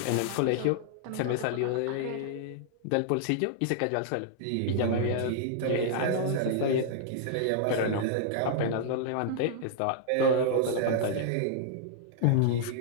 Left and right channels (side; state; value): both; different; correlation -0.01